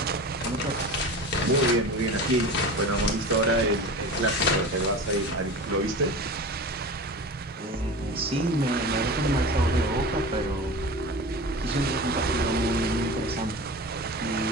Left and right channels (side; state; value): both; normal; correlation 0.33